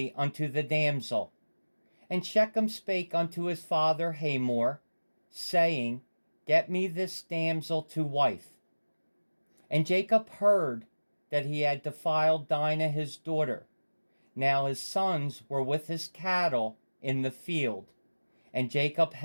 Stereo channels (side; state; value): both; inverted; correlation -1.00